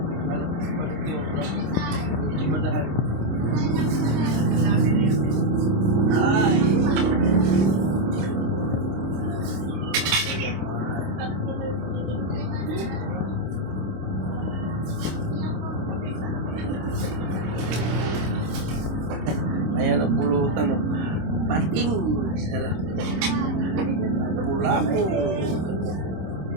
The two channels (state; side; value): late; left; 26 ms